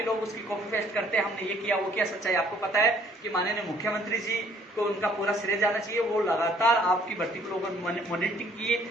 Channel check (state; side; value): normal; both; correlation 0.61